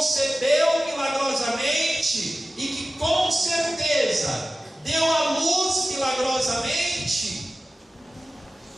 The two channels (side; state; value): both; normal; correlation 0.95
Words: milagrosamente e que com certeza deu à luz milagrosamente.